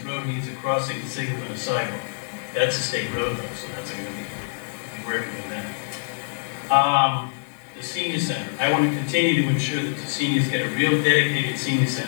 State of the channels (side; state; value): right; silent; 59 dB below the other